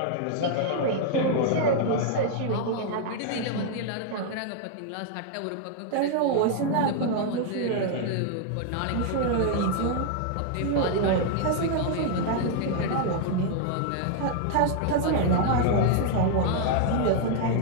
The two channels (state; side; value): different; both; correlation 0.00